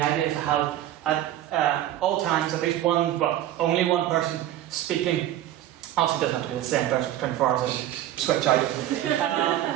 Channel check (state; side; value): quieter; left; 12.8 dB